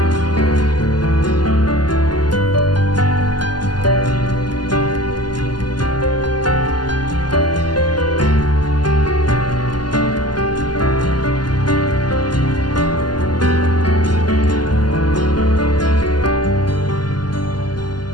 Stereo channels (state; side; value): late; right; 0.71 ms